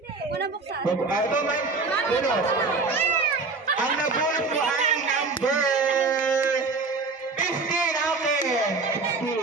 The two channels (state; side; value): quieter; left; 4.1 dB